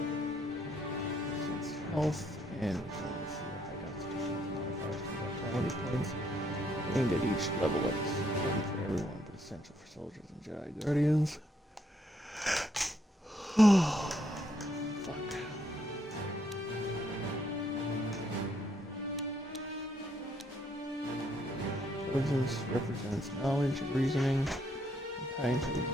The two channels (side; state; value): both; normal; correlation 0.72